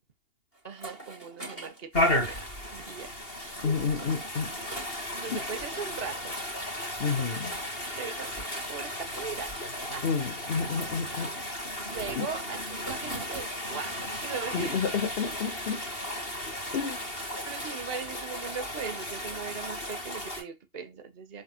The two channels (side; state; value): right; late; 2.8 ms